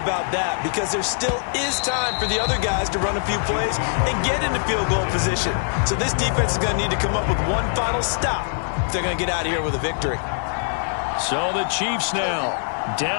that, because there still is time for the other guys to run a few plays and get into field goal position. So this defense is going to need to come up with one final stop if they're going to get out of here with a victory. So the Chiefs now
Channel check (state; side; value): silent; right; 58 dB below the other